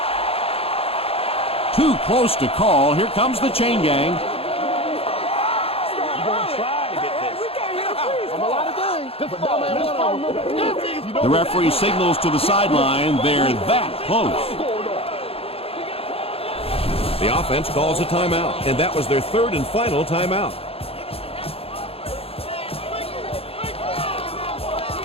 Too close to call. Here comes the chain gang. You're gonna try to get this. From a lot of things. But no, man, one of them. The referee signals to the sideline. They're that close. The offense calls a timeout, and that was their third and final timeout.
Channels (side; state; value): right; late; 0.28 ms